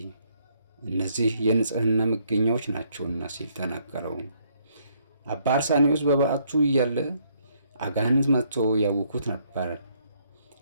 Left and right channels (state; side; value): inverted; both; correlation -0.70